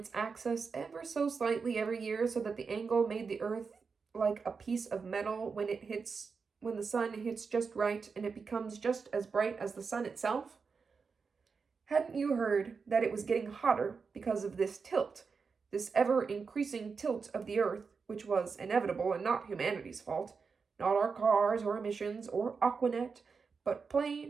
axis ever so slightly every year so that the angle made the earth like a piece of metal when the sun hits just right and it becomes just as bright as the sun itself? Hadn't you heard that it was getting hotter because of this tilt, this ever-increasing tilt of the earth, which was inevitable and not humanity's fault, not our cars or emissions or Aquanet, but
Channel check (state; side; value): quieter; left; 5.2 dB